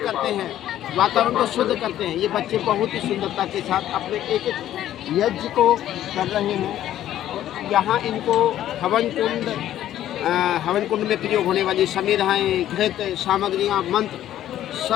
हैं, वातावरण को शुद्ध करते हैं। ये बच्चे बहुत ही सुंदरता के साथ अपने एक एक यज्ञ को कर रहे हैं। यहाँ इनको हवन कुंड में प्रयोग होने वाली समिधाएँ, घृत, सामग्रियाँ, मंत्र,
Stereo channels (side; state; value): right; quieter; 12.3 dB